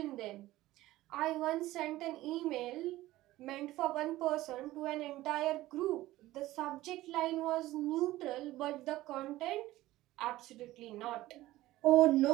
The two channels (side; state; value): left; quieter; 16.6 dB